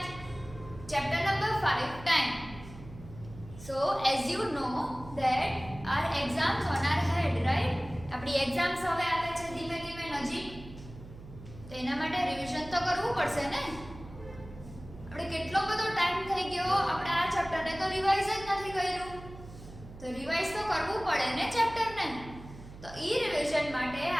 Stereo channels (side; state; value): right; noise; hum, 16 dB below the sound